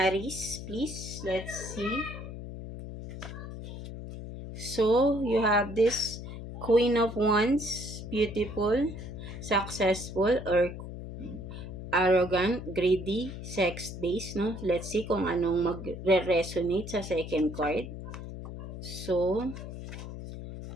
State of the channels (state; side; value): noise; left; hum, 9 dB below the sound